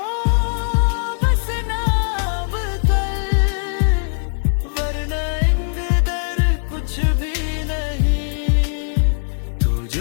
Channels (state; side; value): silent; right; digital silence